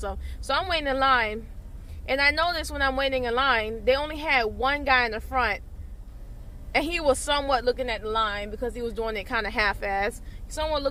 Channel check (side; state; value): both; identical; correlation 1.00